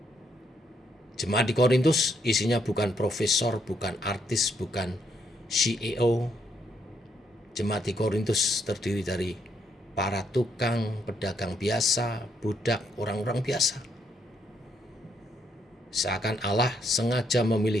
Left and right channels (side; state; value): both; normal; correlation 0.74